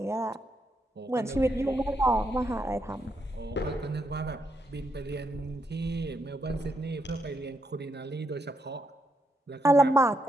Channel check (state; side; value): normal; both; correlation 0.79